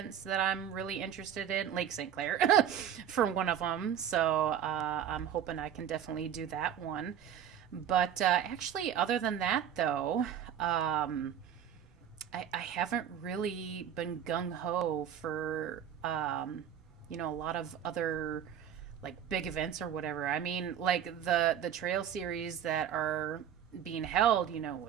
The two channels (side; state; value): left; quieter; 9.4 dB